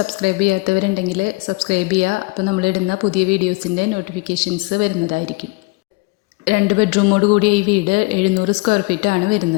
ചെയ്യാത്തവരുണ്ടെങ്കിൽ സബ്സ്ക്രൈബ് ചെയ്യുക. അപ്പോൾ നമ്മളിടുന്ന പുതിയ വീഡിയോസിൻ്റെ നോട്ടിഫിക്കേഷൻസ് വരുന്നതായിരിക്കും. 2 ബെഡ്റൂമോട് കൂടിയ ഈ വീട് 700 സ്ക്വയർ ഫീറ്റാണ്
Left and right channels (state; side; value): quieter; right; 25.7 dB